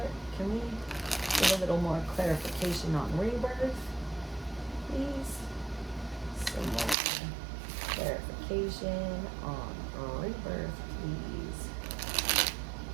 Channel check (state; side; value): drops out; left; at 7.0 s